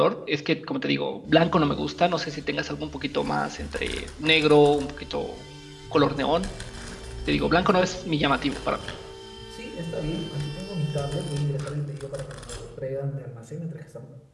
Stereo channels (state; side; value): identical; both; correlation 1.00